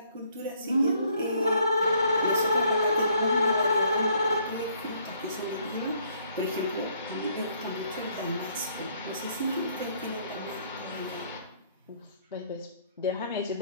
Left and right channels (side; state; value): both; inverted; correlation -0.66